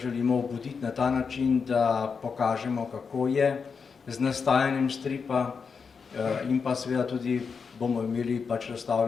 obuditi na ta način, da pokažemo, kako je z nastajanjem stripa in pa seveda tudi bomo imeli pač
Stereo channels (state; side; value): quieter; right; 5.6 dB